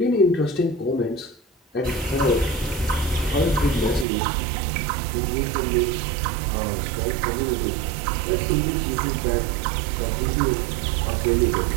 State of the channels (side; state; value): left; drops out; at 4.0 s